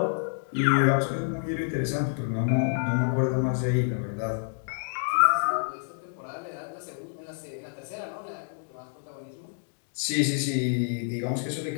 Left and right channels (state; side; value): silent; right; digital silence